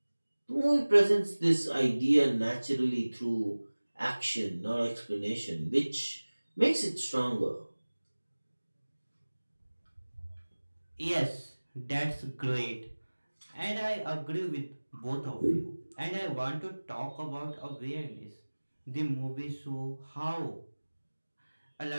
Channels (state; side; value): inverted; both; correlation -1.00